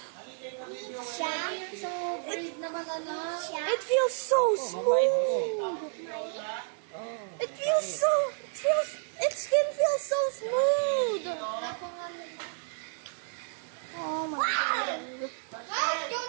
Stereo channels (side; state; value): left; silent; 57 dB below the other